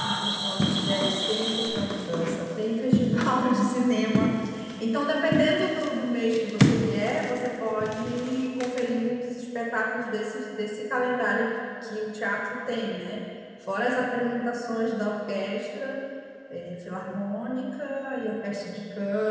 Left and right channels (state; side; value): identical; both; correlation 1.00